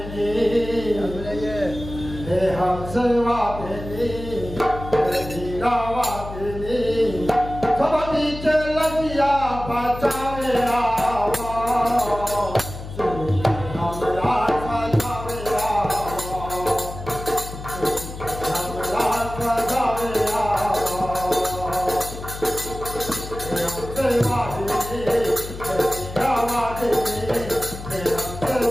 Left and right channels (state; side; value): noise; left; hum, 11 dB below the sound